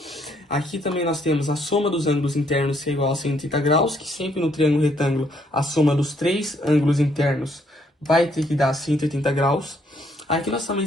Aqui também nós temos a soma dos ângulos internos, que é igual a 130 graus, que sempre no triângulo retângulo, a soma dos três ângulos internos vai ter que dar 180 graus. Aqui nós também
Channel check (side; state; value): both; normal; correlation 0.70